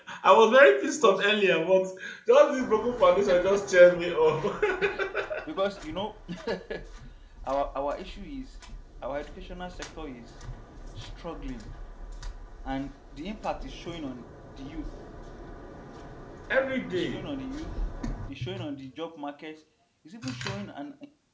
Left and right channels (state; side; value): identical; both; correlation 1.00